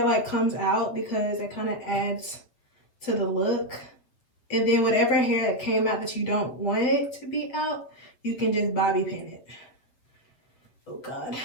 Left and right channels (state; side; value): late; right; 7.7 ms